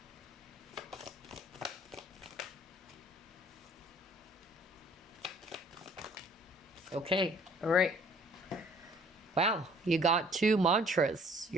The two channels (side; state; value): both; normal; correlation 0.56